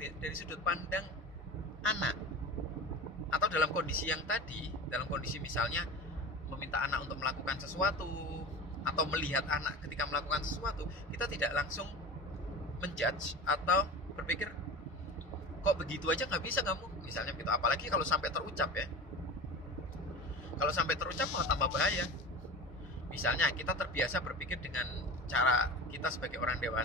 sudut pandang anak. Atau dalam kondisi yang tadi, dalam kondisi misalnya meminta anak untuk melakukan sesuatu atau melihat anak ketika melakukan sesuatu, kita tidak langsung menjudge atau berpikir, kok begitu aja nggak bisa kamu, misalnya gitu. Apalagi kalau sampai terucap ya. Kalau sampai terucap malah tambah bahaya. Misalnya kita terbiasa berpikir dengan cara kita sebagai orang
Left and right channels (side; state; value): both; normal; correlation 0.32